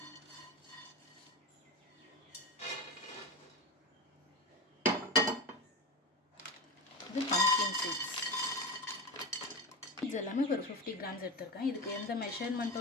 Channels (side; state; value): both; normal; correlation 0.22